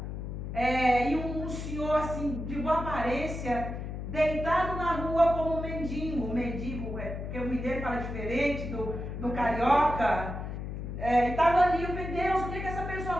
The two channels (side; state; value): left; noise; hum, 6 dB below the sound